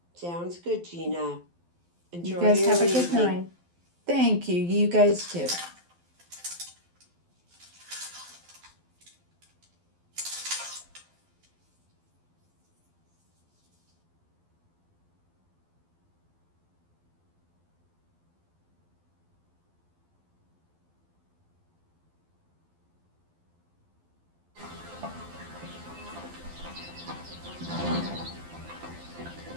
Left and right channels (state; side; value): late; left; 12 ms